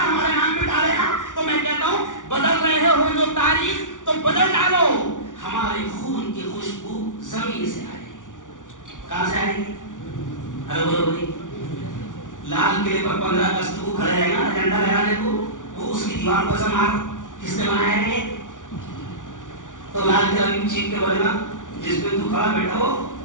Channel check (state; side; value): late; right; 0.87 ms